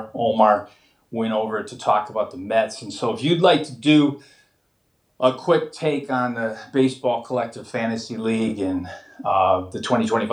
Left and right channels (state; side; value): identical; both; correlation 1.00